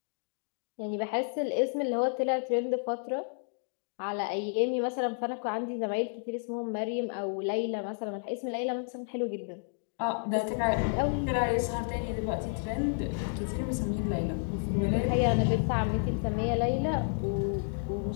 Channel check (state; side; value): silent; right; digital silence